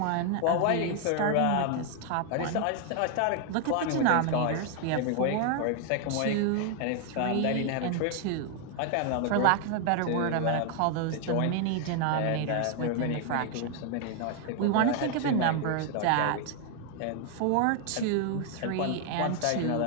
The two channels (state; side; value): different; both; correlation 0.00